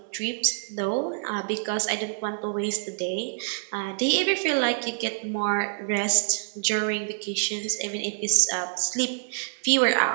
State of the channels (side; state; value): left; silent; 61 dB below the other